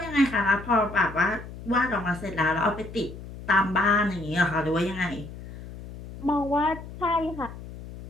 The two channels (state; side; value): noise; left; hum, 13 dB below the sound